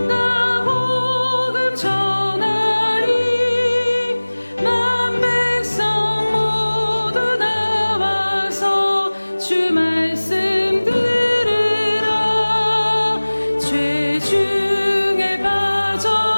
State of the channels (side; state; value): both; inverted; correlation -1.00